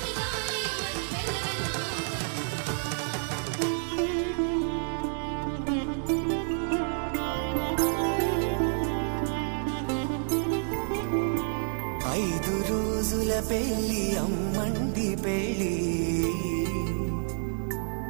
రోజుల పెళ్లి అమ్మండి పెళ్లి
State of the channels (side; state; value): left; silent; 59 dB below the other